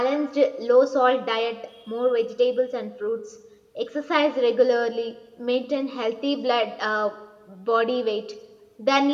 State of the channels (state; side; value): identical; both; correlation 1.00